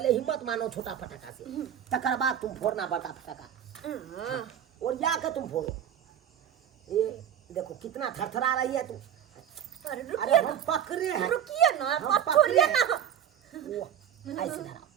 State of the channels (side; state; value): left; quieter; 9.6 dB